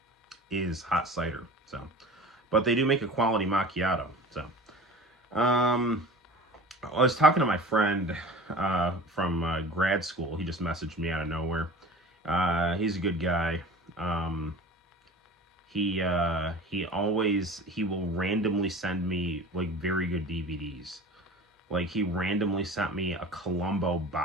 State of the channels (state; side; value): normal; both; correlation 0.39